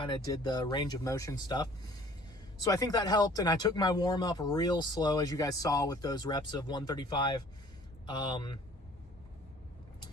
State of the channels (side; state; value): both; normal; correlation 0.53